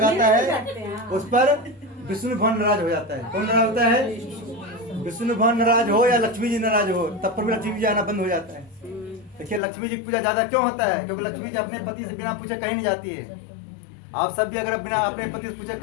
है उस पर विष्णु भगवान नाराज हो जाता है। कौन नाराज होता है? विष्णु भगवान नाराज हो या लक्ष्मी जी नाराज हो, तब पर भी लक्ष्मी जी आना बंद हो जाता है। देखिए, लक्ष्मी जी की पूजा ज्यादा क्यों होता है? क्योंकि लक्ष्मी जी अपने पति से बिना पूछे कहीं नहीं जाती है। आप सब भी अगर बिना अपने पति से पूछे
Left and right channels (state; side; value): drops out; right; at 9.6 s